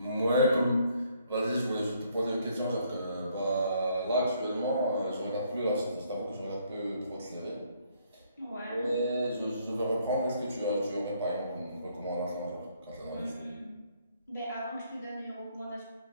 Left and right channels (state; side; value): inverted; both; correlation -0.68